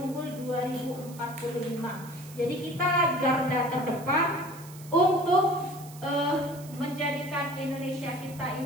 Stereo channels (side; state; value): right; noise; hiss, 19 dB below the sound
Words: 2045. Jadi kita garda terdepan untuk menjadikan Indonesia kita